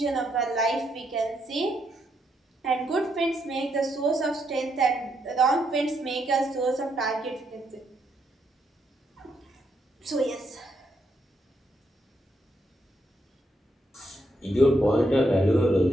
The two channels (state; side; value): normal; both; correlation 0.78